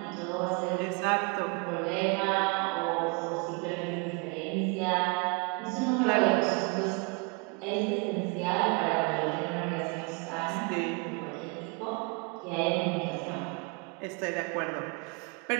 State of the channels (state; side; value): quieter; left; 33.4 dB